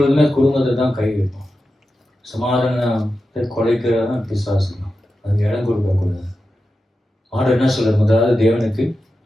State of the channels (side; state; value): both; normal; correlation 0.91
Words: குடும்பத்தை தான் கை வைப்போம். சமாதானத்தை கொலைக்கிறதான் பிசாசு தான், அதுக்கு இடம் கொடுக்க கூடாது. ஆண்டவர் என்ன சொல்ற, முதலாவது தேவனுக்கு